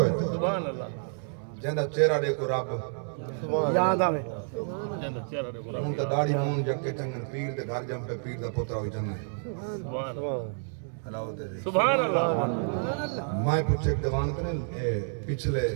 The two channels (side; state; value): left; silent; 58 dB below the other